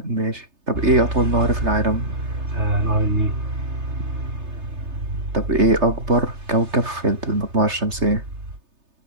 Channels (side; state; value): left; late; 3.3 ms